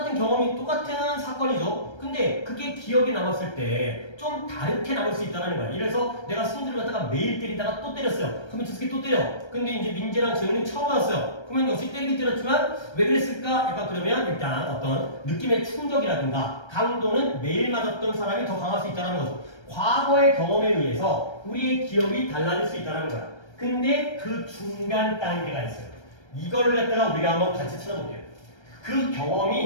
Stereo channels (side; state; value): right; late; 1.3 ms